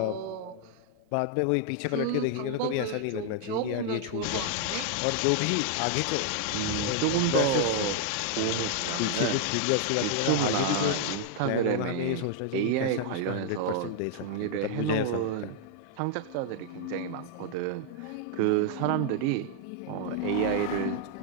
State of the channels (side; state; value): both; different; correlation 0.00